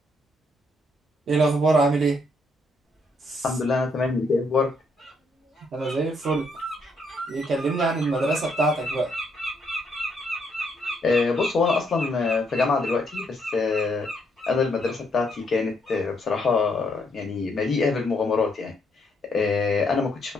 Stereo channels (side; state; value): both; normal; correlation 0.73